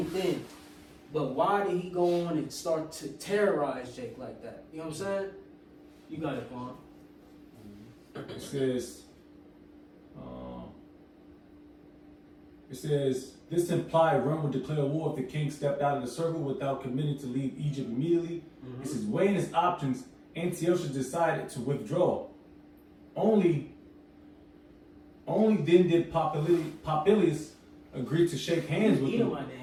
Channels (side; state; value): both; identical; correlation 1.00